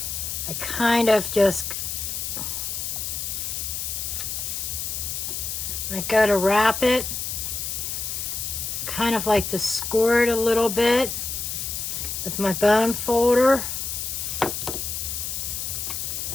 I kind of just, when I go to wrap it, kind of like to score it a little bit with my bone folder.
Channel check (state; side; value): noise; left; hiss, 4 dB below the sound